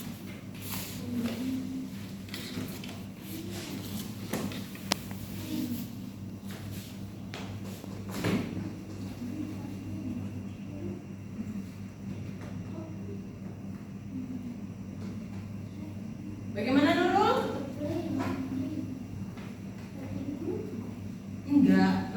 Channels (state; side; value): identical; both; correlation 1.00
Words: Bagaimana Nurul? Enggak,